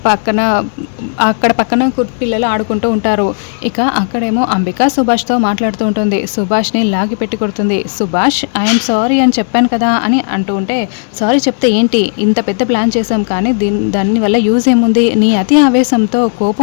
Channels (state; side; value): silent; right; digital silence